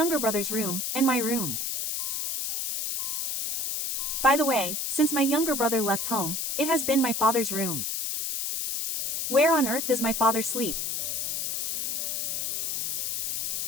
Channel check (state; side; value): noise; left; hiss, 1 dB below the sound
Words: brother's room, and my room. By the way, since my younger brother left home, it has been my father's room. Where on earth does my father sleep?